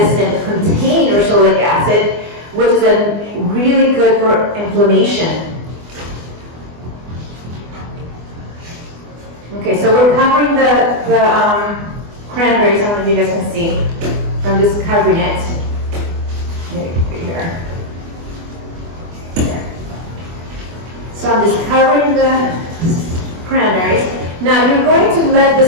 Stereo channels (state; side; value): late; left; 24 ms